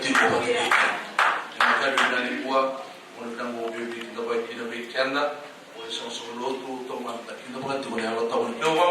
ko ba't kayo kaya. Nakagabi na ni Buwa, kung nang mo bibig na ba kinabig kaya na, kung isang suluto, tumanta, kinabag iti ko na yung taon. Yung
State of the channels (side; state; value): both; identical; correlation 1.00